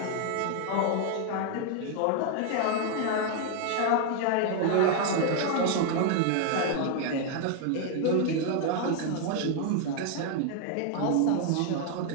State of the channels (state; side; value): different; both; correlation 0.00